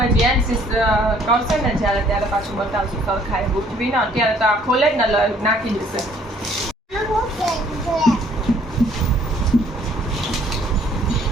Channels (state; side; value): normal; both; correlation 0.60